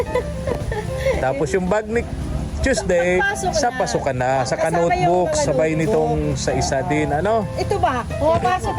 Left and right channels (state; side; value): identical; both; correlation 1.00